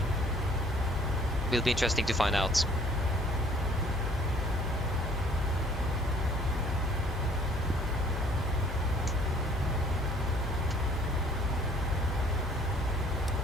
Will be interesting to find out.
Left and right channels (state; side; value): normal; both; correlation 0.57